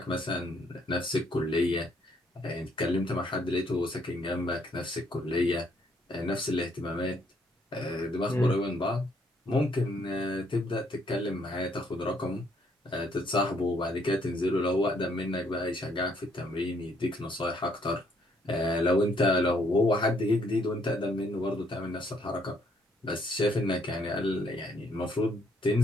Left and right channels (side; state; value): both; normal; correlation 0.69